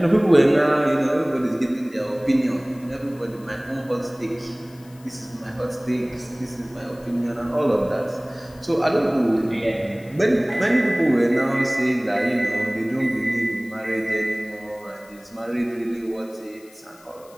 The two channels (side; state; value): left; noise; hiss, 26 dB below the sound